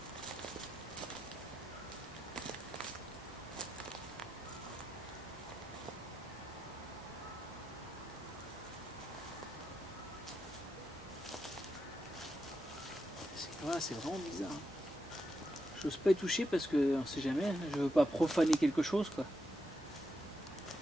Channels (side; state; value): both; normal; correlation 0.84